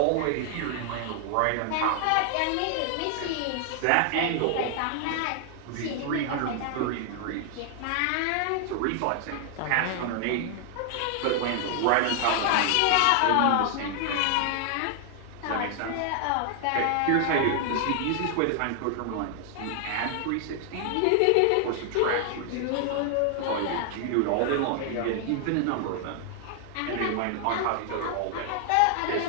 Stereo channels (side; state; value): both; different; correlation 0.00